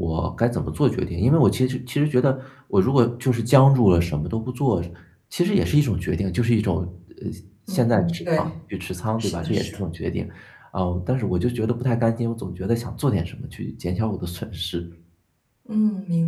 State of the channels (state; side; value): identical; both; correlation 1.00